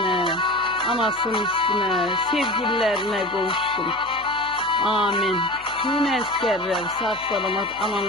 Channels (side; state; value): left; noise; hum, 24 dB below the sound